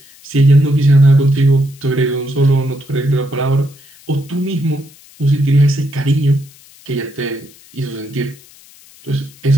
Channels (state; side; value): noise; left; hiss, 25 dB below the sound